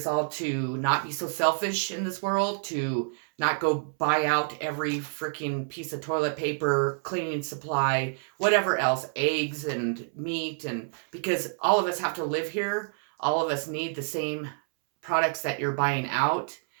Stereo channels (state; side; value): silent; left; 59 dB below the other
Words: all to not be so selfish in this world, to not go buy out every freaking piece of toilet paper, cleaning supply, whatever else, eggs and meat, and because all of us have to live here. All of us need the same products that you're buying out.